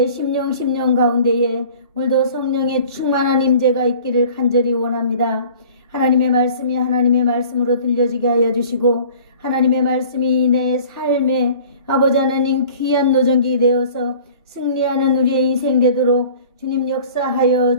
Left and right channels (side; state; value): both; inverted; correlation -0.47